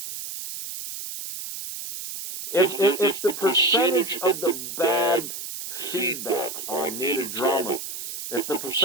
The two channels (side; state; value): right; noise; hiss, 8 dB below the sound